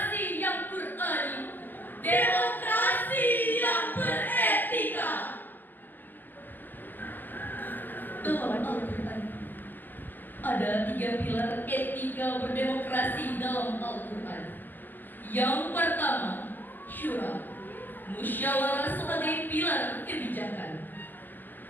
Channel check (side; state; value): right; late; 0.089 ms